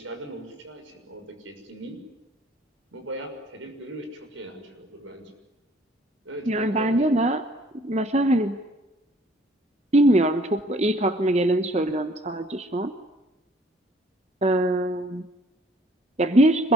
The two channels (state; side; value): normal; both; correlation 0.58